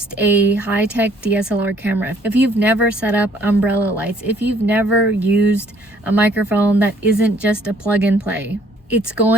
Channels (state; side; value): normal; both; correlation 0.61